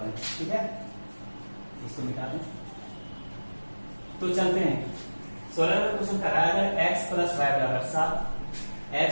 हैं। ठीक है, इसको निकालें। तो चलते हैं 16 नंबर क्वेश्चन कर रहा है अगर x प्लस वाई बराबर 7,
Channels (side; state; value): both; inverted; correlation -1.00